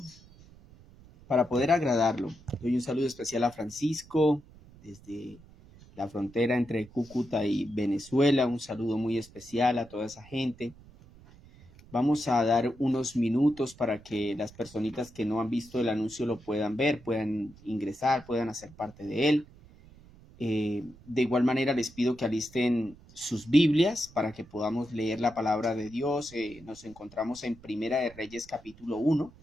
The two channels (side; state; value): right; noise; rumble, 23 dB below the sound